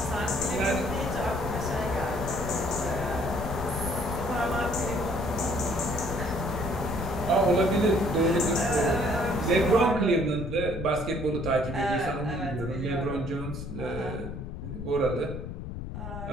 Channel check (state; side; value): noise; left; rumble, 7 dB below the sound